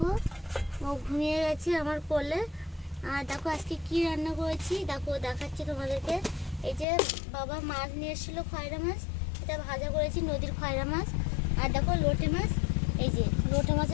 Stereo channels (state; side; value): drops out; right; at 6.9 s